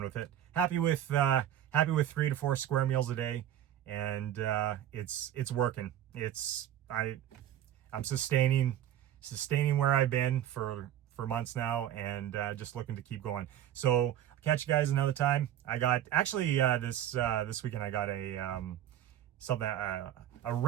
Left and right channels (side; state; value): left; quieter; 11.3 dB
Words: with it. Happy with 3 to 4 square meals a day, and it's working. I'm sustaining where I've been for months now, and just looking to keep going. So I'll catch you guys another time. I got actually this weekend I got a